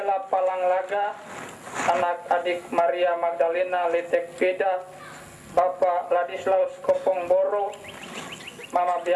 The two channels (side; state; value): both; identical; correlation 1.00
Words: Palanglaga, anak adik Maria Magdalena Letek Peda, Bapak Ladislaus Kopong Boro, Mama